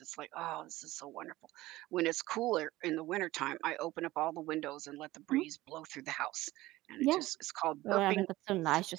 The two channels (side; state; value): left; quieter; 17.7 dB